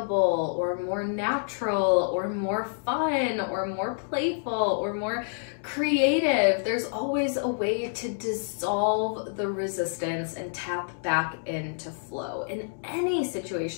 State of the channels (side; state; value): right; silent; digital silence